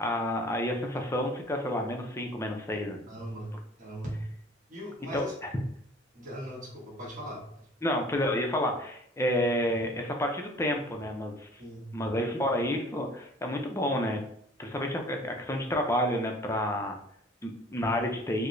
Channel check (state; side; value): normal; both; correlation 0.50